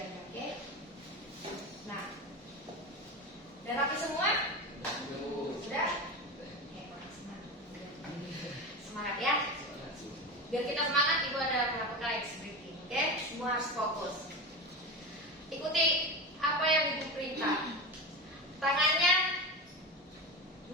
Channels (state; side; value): normal; both; correlation 0.23